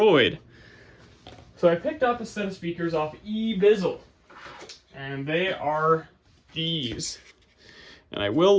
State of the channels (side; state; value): both; identical; correlation 1.00